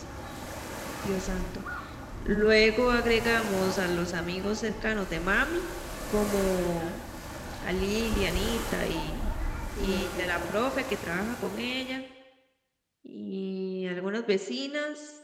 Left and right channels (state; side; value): identical; both; correlation 1.00